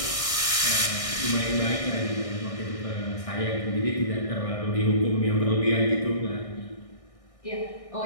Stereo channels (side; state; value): right; late; 1.6 ms